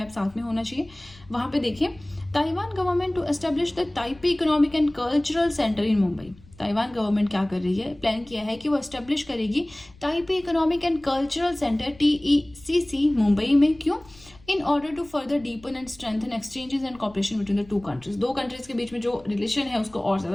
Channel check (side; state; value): left; noise; rumble, 24 dB below the sound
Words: साथ में होना चाहिए। वहां पे देखिए, Taiwan government to establish the Taipei economic and cultural centre in Mumbai. Taiwan government क्या कर रही है, प्लान किया है कि वो एस्टेब्लिश करेगी Taipei economic and cultural centre TECC Mumbai में। क्यों? In order to further deepen and strengthen exchanges and cooperation between the two countries. दो कंट्रीज के बीच में जो रिलेशन है उसको और